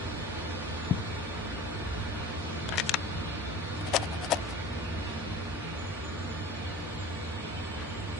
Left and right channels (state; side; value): normal; both; correlation 0.39